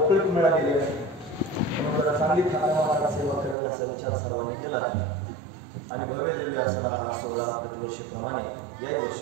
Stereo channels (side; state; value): left; drops out; at 3.6 s